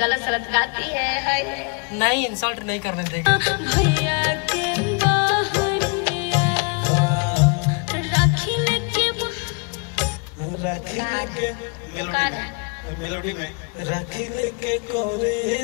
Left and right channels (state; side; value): quieter; right; 35.8 dB